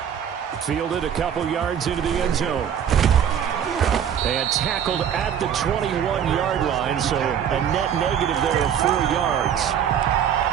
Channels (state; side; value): quieter; left; 8.8 dB